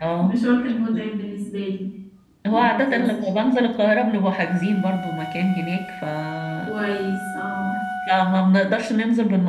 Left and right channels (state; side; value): identical; both; correlation 1.00